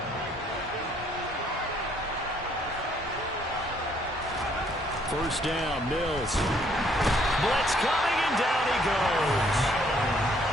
First down, Mills. Blitz coming, and down he goes.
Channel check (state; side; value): normal; both; correlation 0.66